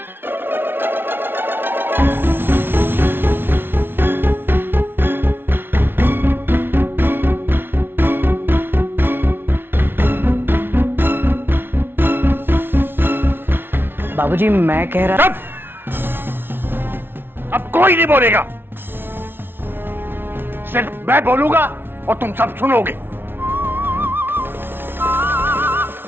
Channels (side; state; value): left; late; 0.11 ms